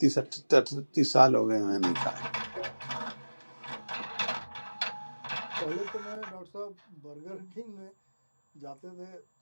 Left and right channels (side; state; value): both; inverted; correlation -1.00